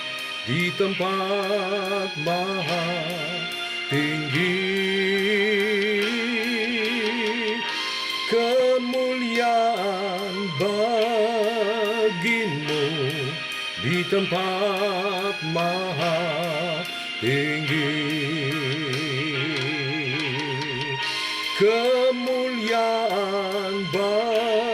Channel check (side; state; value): both; identical; correlation 1.00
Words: di tempat maha tinggi. Kemuliaan bagimu di tempat maha tinggi. Kemuliaan